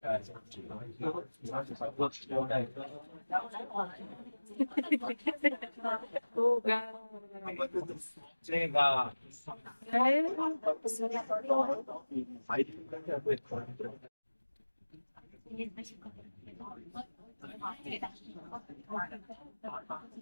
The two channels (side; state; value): both; inverted; correlation -1.00